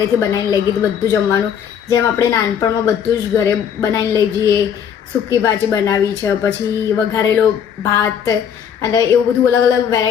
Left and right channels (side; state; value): right; quieter; 8.2 dB